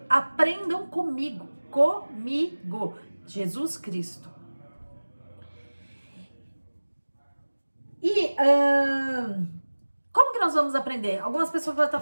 aprendam comigo, Jesus Cristo. E como que nós vamos aprender? Algumas pessoas vão estar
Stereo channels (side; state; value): both; inverted; correlation -1.00